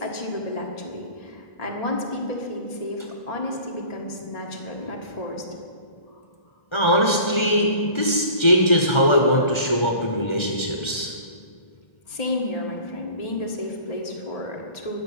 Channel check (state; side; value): late; right; 1.3 ms